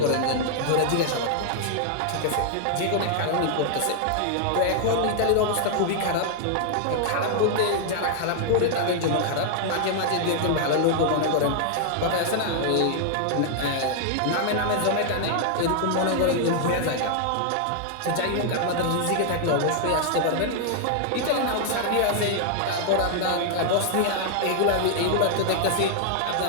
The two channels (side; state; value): both; different; correlation 0.00